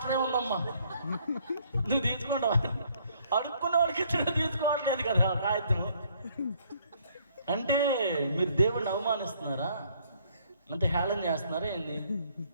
ఉందమ్మా. నువ్వు తీసుకుంటావా? అడుక్కున్న వాళ్ళకి ఇచ్చిన తీసుకోవట్లేదు కదా కాగితం. అంటే మీరు దేవుడిని అవమానిస్తున్నారా? అంటే హేళన చేస్తున్నారా ఏంది?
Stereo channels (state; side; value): inverted; both; correlation -0.65